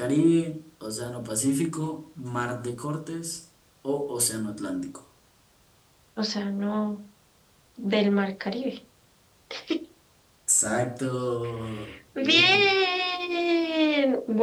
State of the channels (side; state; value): both; identical; correlation 1.00